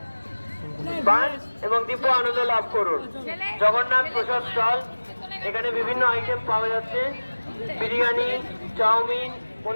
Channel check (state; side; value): inverted; both; correlation -1.00